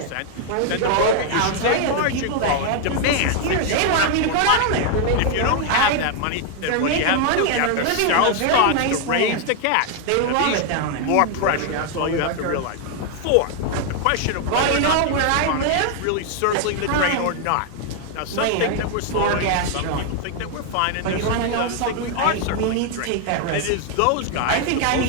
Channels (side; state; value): both; different; correlation 0.00